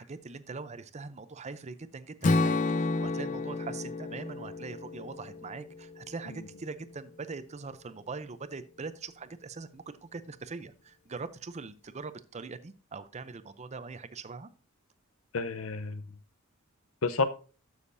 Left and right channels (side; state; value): both; normal; correlation 0.40